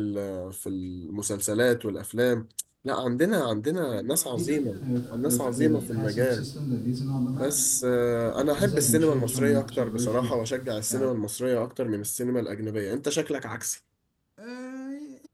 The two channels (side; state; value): both; identical; correlation 1.00